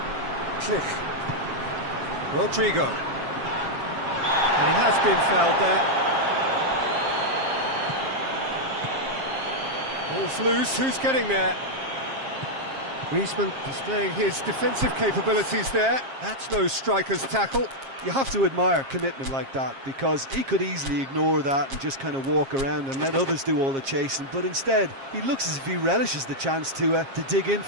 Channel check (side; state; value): left; late; 7.4 ms